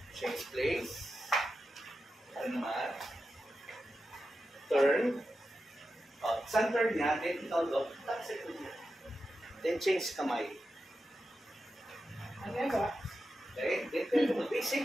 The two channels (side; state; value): both; normal; correlation 0.90